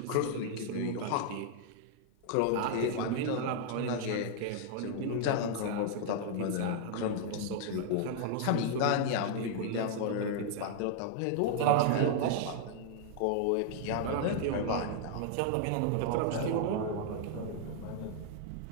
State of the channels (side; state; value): both; different; correlation 0.00